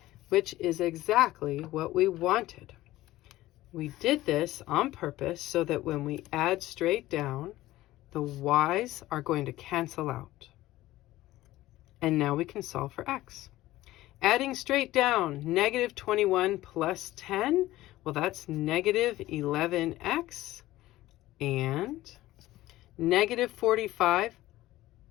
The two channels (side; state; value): right; quieter; 16.3 dB